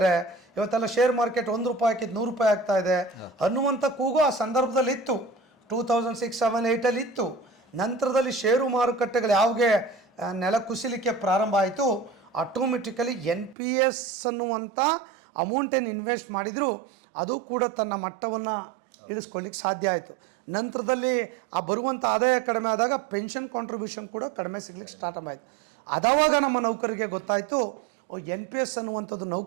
ಇವತ್ತೆಲ್ಲ ಶೇರ್ ಮಾರ್ಕೆಟ್ 1 ರೂಪಾಯಿ ಹಾಕಿದ್ದು 100 ರೂಪಾಯಿ ಆಗ್ತಾ ಇದೆ ಅನ್ನುವಂಥ ಕೂಗು ಆ ಸಂದರ್ಭದಲ್ಲಿ ಇತ್ತು. 2006, 7, 8 ಇತ್ತು. ನಂತರದಲ್ಲಿ ಷೇರು ಮಾರುಕಟ್ಟೆಗಳು ಯಾವಾಗೆ ನೆಲ ಕುಸಿಲಿಕ್ಕೆ ಪ್ರಾರಂಭ ಆಯಿತು, ಆಟೋಮೆಟಿಕಲಿ NPS ಅನ್ನುವಂಥ ಅಮೌಂಟ್ ಏನು ಇನ್ವೆಸ್ಟ್ ಮಾಡಿದ್ರು ಅದು ಕೂಡ ತನ್ನ ಮಟ್ಟವನ್ನು ಇಳಿಸ್ಕೊಳ್ಳಿಕ್ಕೆ ಸಾಧ್ಯ ಆಯಿತು. ನಂತರದಲ್ಲಿ ಆ ಬರುವಂಥ ಆದಾಯ ಕಡಿಮೆ ಆದಾಗ ಪೆನ್ಷನ್ ಕಾಂಟ್ರಿಬ್ಯೂಷನ್ ಕೂಡ ಕಡಿಮೆ ಸಿಗ್ಲಿಕ್ಕೆ ಸ್ಟಾರ್ಟ್ ಆಯಿತು. ಅದಾವಾಗ ನಮ್ಮ ನೌಕರಿಗೆ ಗೊತ್ತಾಯಿತು, NPS ಅನ್ನುವಂಥದ್ದು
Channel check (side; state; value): left; drops out; at 13.6 s